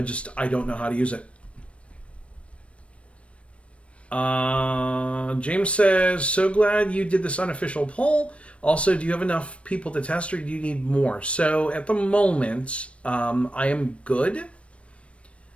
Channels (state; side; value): late; right; 0.061 ms